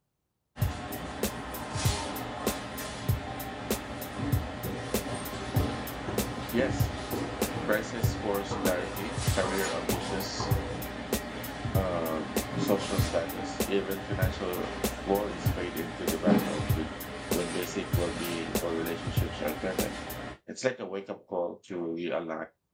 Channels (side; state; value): both; identical; correlation 1.00